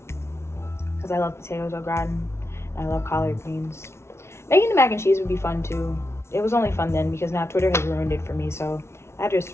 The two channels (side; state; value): right; late; 0.13 ms